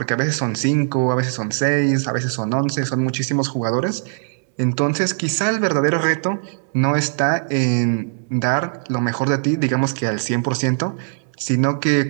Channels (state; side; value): silent; left; 64 dB below the other